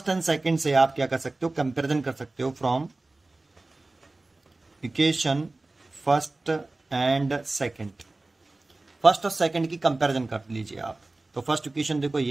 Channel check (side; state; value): left; quieter; 3.1 dB